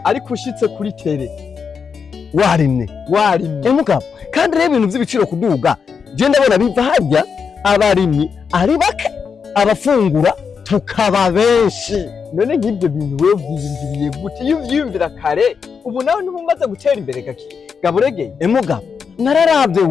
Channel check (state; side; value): quieter; right; 6.1 dB